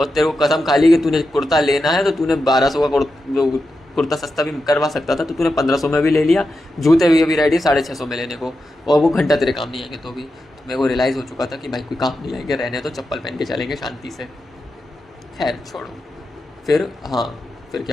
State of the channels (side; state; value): both; normal; correlation 0.89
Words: तेरे को कसम खा ली कि तूने कुर्ता लेना है तो तूने 1200 का कुर्ता सस्ता भी करवा सकता था, तो तूने 1500 में भी ले लिया। जूते भी अभी रेडी 650 में लेने को, और वो घंटा तेरे काम नहीं आएंगे। तो भी तो मेरे को रियलाइज़ हो चुका था कि भाई कोई काम नहीं आएंगे, रहने तो चप्पल पहन के चलेंगे शांति से। खैर छोड़ो। फिर हाँ, फिर